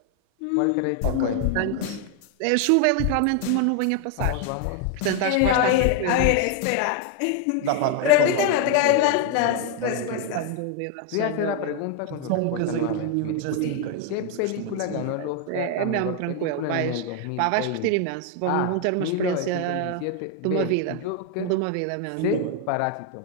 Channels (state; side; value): different; both; correlation 0.01